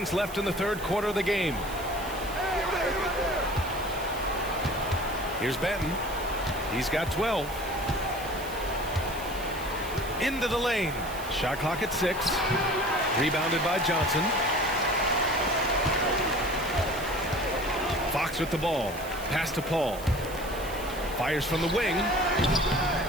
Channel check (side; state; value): right; noise; hiss, 15 dB below the sound